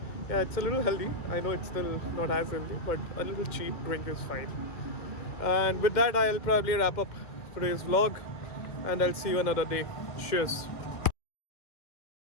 yeah, it's a little healthy. I know it's still not as healthy, but a little cheap drink is fine. And with that, I'll probably wrap up today's vlog, and I'll see you another day. Cheers.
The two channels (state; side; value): late; right; 2.1 ms